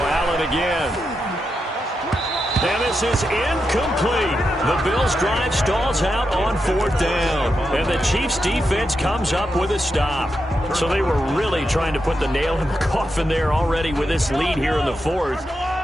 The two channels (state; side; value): normal; both; correlation 0.86